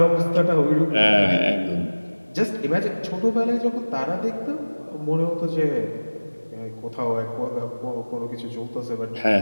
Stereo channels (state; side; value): inverted; both; correlation -1.00